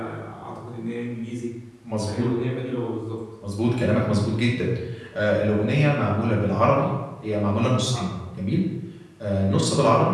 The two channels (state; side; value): identical; both; correlation 1.00